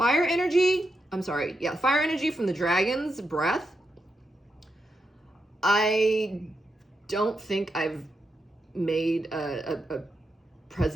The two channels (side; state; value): both; normal; correlation 0.85